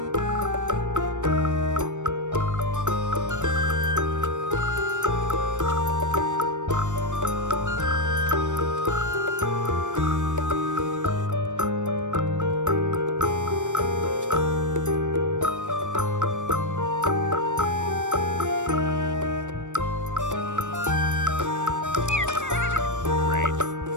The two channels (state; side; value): late; left; 0.85 ms